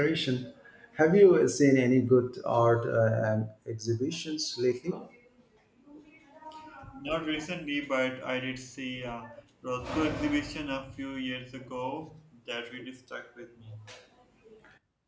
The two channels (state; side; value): identical; both; correlation 1.00